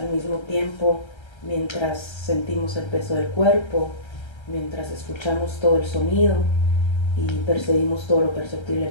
mismo tiempo, mientras sentimos el peso del cuerpo, mientras escuchamos todo el sonido y percibimos todo lo perceptible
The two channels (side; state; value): right; late; 1.3 ms